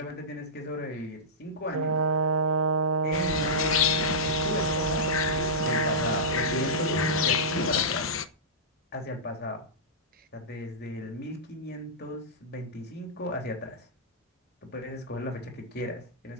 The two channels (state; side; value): normal; both; correlation -0.14